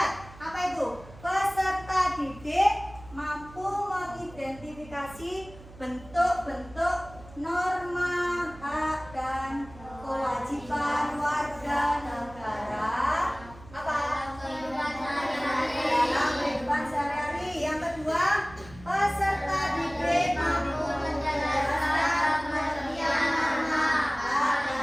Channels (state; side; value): noise; right; hum, 19 dB below the sound